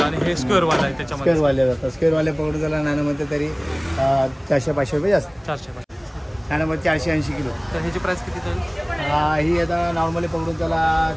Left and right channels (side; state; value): both; identical; correlation 1.00